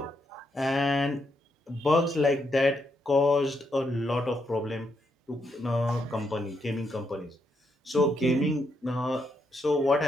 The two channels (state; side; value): normal; both; correlation 0.79